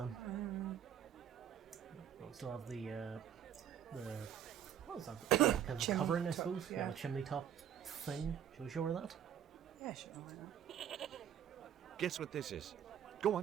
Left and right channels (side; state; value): left; quieter; 9.7 dB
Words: We still have the what was that? Kind of covering, I suppose? Yeah, the chimney top thing. Should we show her that? Yeah, sure, why not? Guess what this is? Go